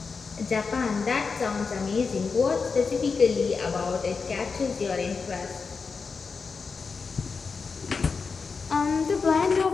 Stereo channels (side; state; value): right; quieter; 5.0 dB